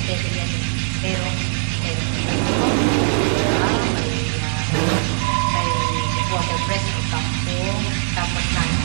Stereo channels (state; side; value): silent; left; digital silence